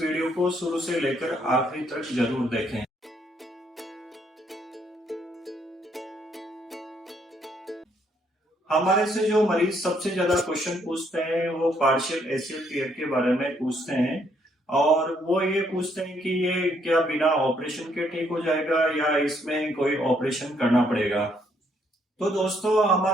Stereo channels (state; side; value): normal; both; correlation 0.70